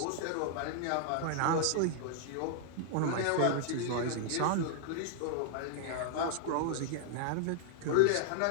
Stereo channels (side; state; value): both; different; correlation -0.01